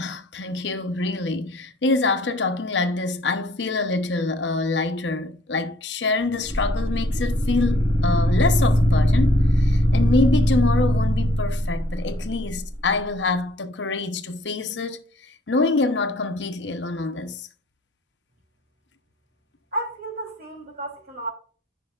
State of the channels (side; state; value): both; normal; correlation 0.60